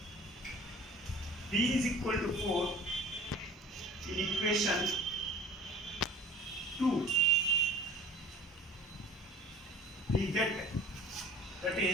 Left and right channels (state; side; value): normal; both; correlation 0.44